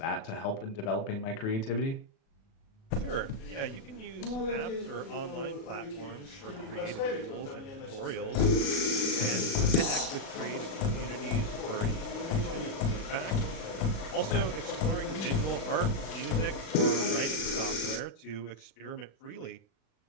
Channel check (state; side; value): late; right; 36 ms